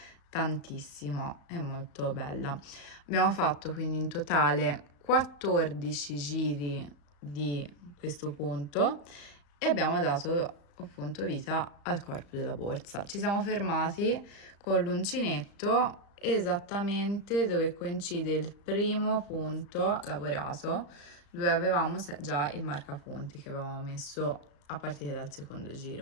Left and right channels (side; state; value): right; late; 35 ms